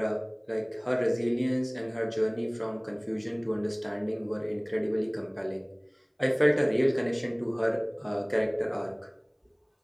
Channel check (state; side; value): identical; both; correlation 1.00